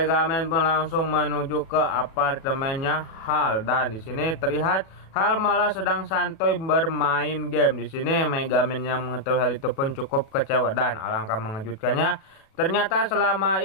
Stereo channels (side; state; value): right; late; 37 ms